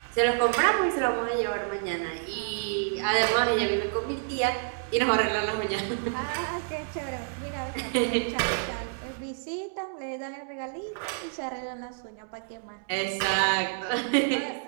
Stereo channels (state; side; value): silent; left; digital silence